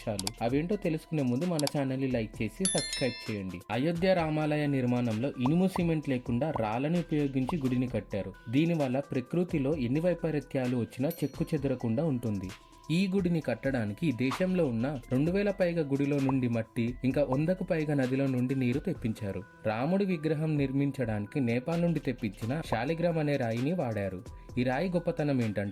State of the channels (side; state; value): both; identical; correlation 1.00